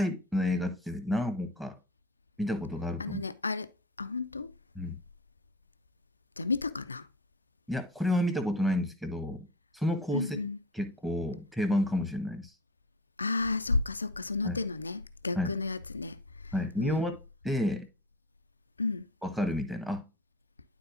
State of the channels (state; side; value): normal; both; correlation 0.28